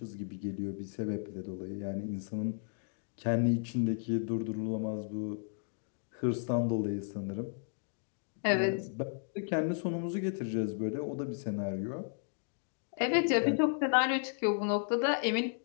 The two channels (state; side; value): silent; right; digital silence